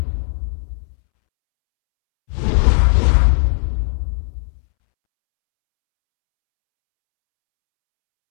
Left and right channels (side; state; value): right; silent; 68 dB below the other